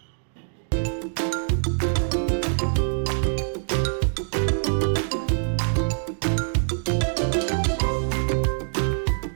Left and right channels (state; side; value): silent; left; digital silence